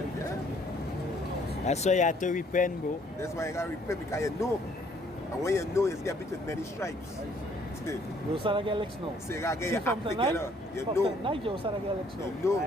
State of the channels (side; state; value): both; normal; correlation 0.63